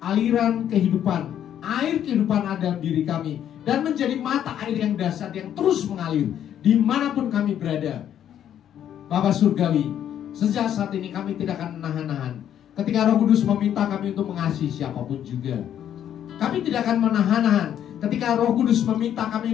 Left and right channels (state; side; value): quieter; right; 10.1 dB